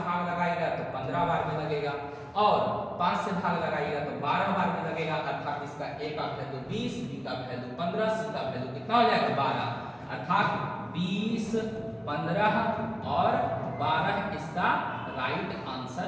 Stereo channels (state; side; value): identical; both; correlation 1.00